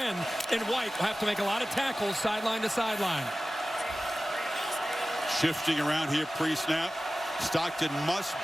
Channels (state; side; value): normal; both; correlation 0.96